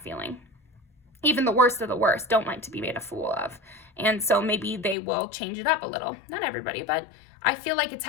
feeling. Even the worst of the worst don't like to be made a fool of. And so maybe they will change it up a little. Not everybody, but I feel like it's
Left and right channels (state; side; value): drops out; right; at 5.0 s